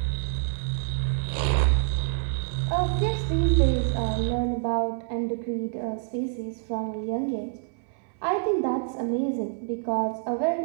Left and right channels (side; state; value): left; silent; 60 dB below the other